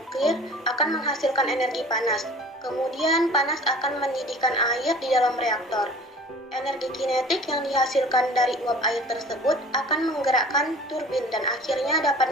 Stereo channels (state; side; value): normal; both; correlation 0.45